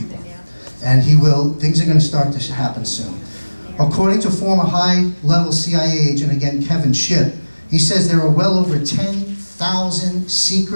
And he will. Things are going to start to happen soon. According to former high-level CIA agent, again, Kevin Shipp, he says there are well over 10,000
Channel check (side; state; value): both; inverted; correlation -1.00